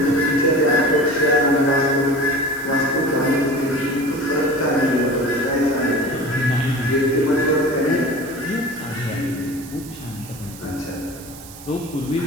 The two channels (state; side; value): noise; right; hiss, 17 dB below the sound